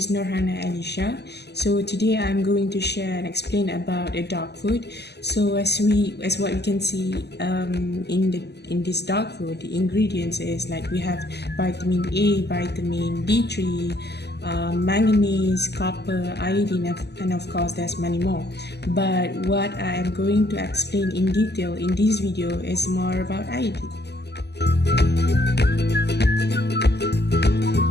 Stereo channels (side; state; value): right; late; 0.49 ms